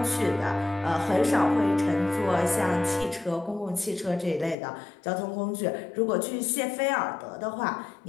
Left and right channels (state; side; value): drops out; right; at 4.5 s